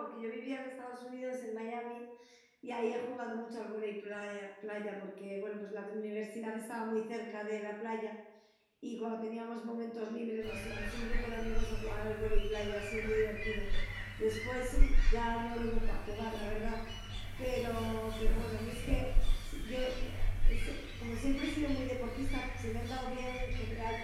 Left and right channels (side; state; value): both; identical; correlation 1.00